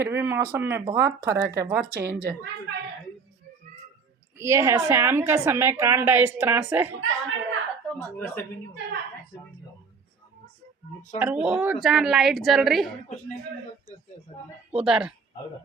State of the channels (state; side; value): quieter; left; 5.3 dB